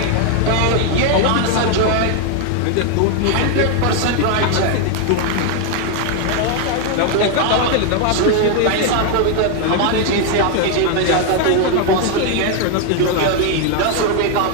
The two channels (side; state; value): both; different; correlation 0.01